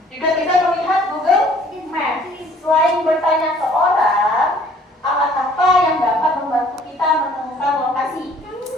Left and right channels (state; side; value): normal; both; correlation 0.56